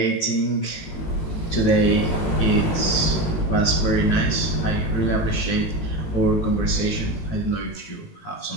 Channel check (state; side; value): late; right; 18 ms